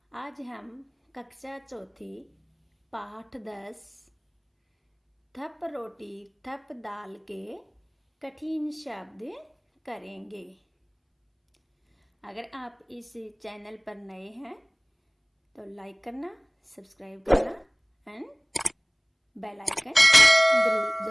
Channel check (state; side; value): identical; both; correlation 1.00